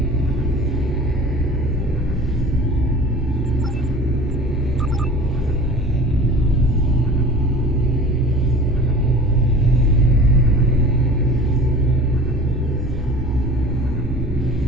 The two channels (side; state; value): both; normal; correlation 0.40